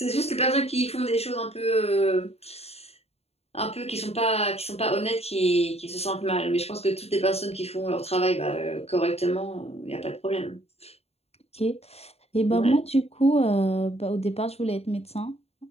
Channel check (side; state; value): right; late; 0.30 ms